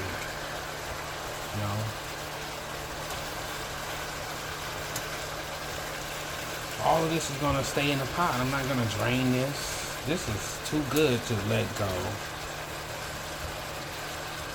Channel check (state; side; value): identical; both; correlation 1.00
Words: You know? All of this is gonna stay in the pot. I'm not gonna drain this. This is too good to let go.